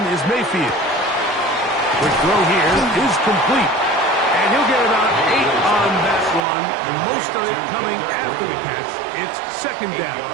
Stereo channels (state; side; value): drops out; left; at 6.4 s